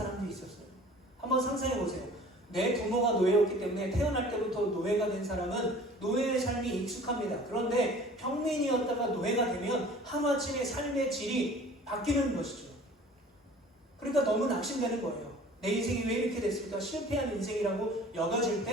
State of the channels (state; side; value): normal; both; correlation 0.46